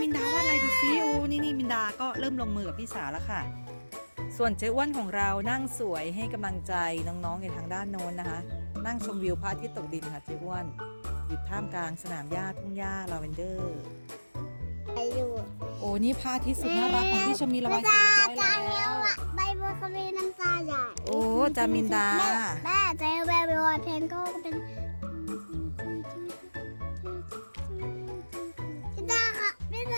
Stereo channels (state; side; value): inverted; both; correlation -1.00